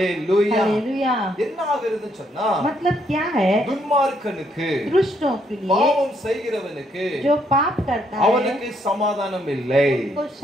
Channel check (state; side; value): normal; both; correlation 0.72